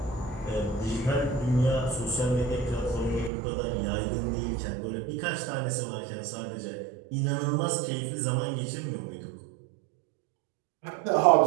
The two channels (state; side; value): drops out; left; at 3.3 s